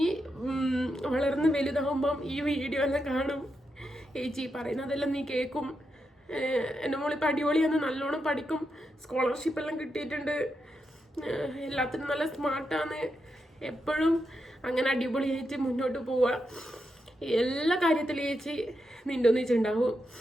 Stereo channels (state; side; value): normal; both; correlation 0.85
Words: വളർന്ന് വലുതാകുമ്പം ഈ വീഡിയോ എല്ലാം കാണും, ചേച്ചി പറയുന്നതെല്ലാം നീ കേൾക്കും. എൻ്റെ മോളിപ്പോൾ അടിപൊളിയാണ്, നല്ലോണം പഠിക്കും, സ്കോളർഷിപ്പെല്ലാം കിട്ടിയിട്ടുണ്ട്, എല്ലാത്തിനും നല്ല സ്മാർട്ടാണ്. എപ്പോഴും അങ്ങനെ അടിപൊളിയായിട്ട് മുന്നോട്ട് പോവുക. എല്ലാ കാര്യത്തിലും ചേച്ചി നിൻ്റെ ഒന്നിച്ചുണ്ടാവും.